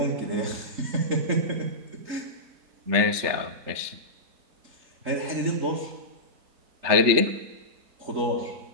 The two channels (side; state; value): left; late; 3.4 ms